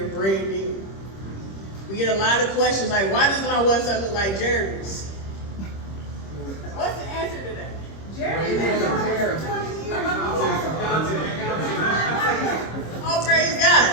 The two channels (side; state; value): right; late; 26 ms